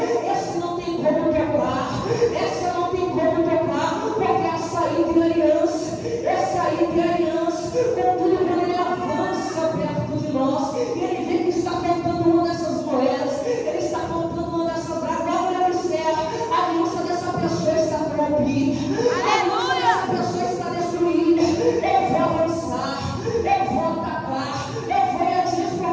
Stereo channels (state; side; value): identical; both; correlation 1.00